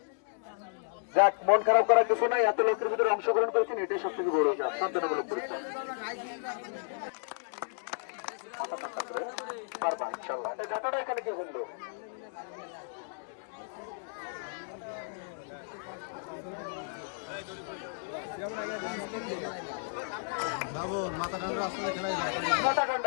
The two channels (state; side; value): silent; right; digital silence